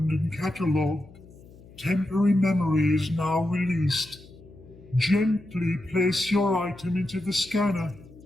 and catalogued. Temporary memory is now released. Gently place your item into the scanner,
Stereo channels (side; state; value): left; noise; hum, 22 dB below the sound